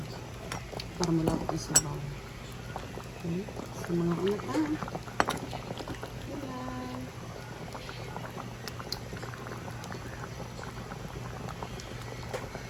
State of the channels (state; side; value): identical; both; correlation 1.00